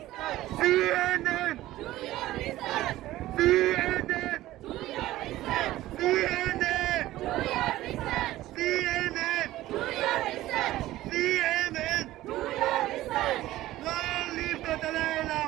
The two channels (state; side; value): quieter; left; 15.7 dB